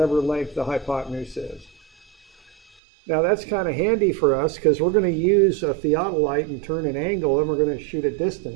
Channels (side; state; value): left; drops out; at 2.6 s